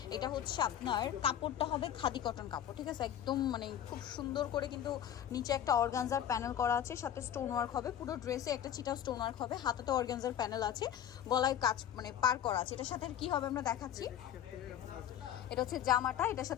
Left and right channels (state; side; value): quieter; right; 10.3 dB